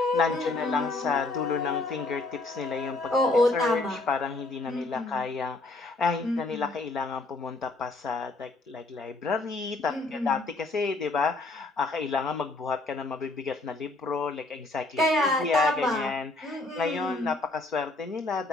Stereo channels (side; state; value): right; quieter; 3.1 dB